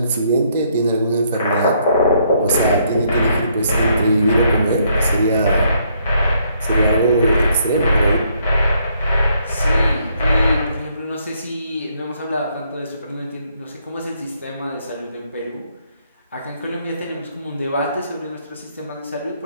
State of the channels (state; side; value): inverted; both; correlation -0.70